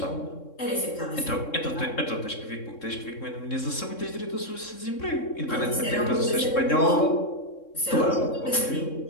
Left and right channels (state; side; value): late; right; 3.6 ms